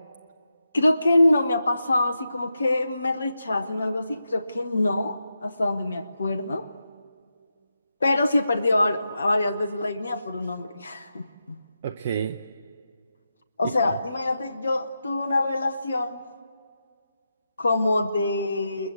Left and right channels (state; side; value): inverted; both; correlation -0.88